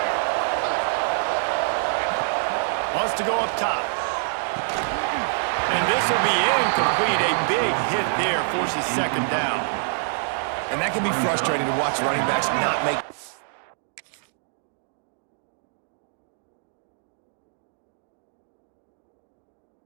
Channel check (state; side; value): silent; left; digital silence